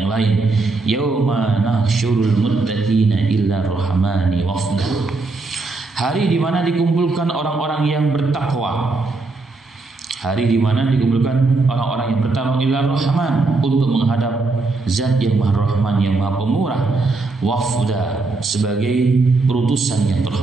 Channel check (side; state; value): left; quieter; 3.6 dB